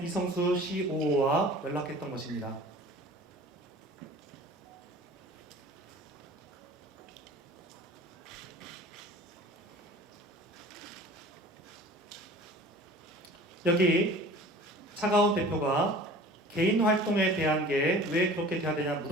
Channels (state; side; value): normal; both; correlation 0.44